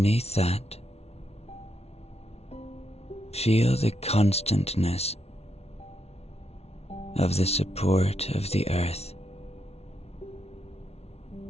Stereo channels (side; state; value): right; late; 0.31 ms